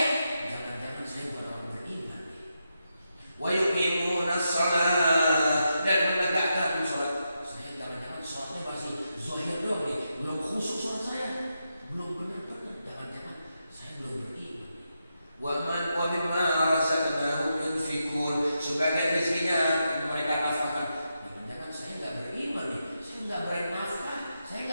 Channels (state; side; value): inverted; both; correlation -0.86